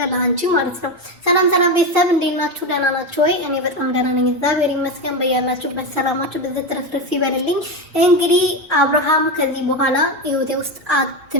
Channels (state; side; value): normal; both; correlation 0.15